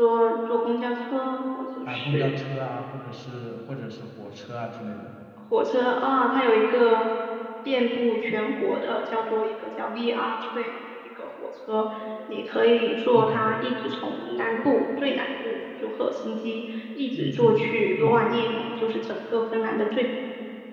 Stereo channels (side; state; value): both; identical; correlation 1.00